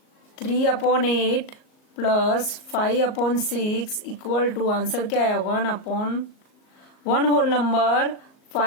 3/8 प्लस 5/6 इक्वल टू आंसर क्या है 1 होल नंबर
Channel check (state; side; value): late; right; 38 ms